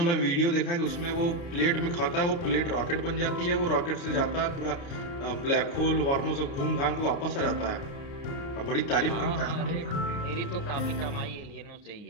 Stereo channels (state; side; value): late; right; 29 ms